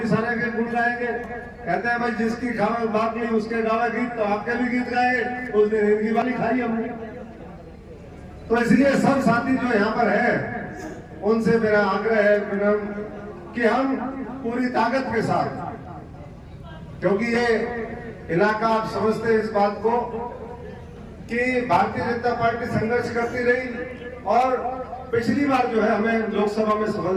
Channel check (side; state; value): both; identical; correlation 1.00